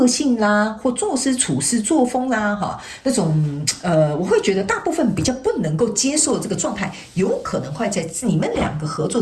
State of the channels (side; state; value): both; identical; correlation 1.00